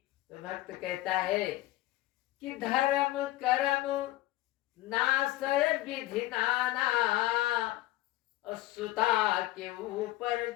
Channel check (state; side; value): quieter; right; 17.0 dB